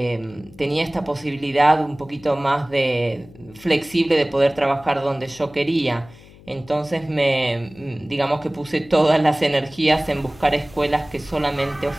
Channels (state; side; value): noise; left; hum, 22 dB below the sound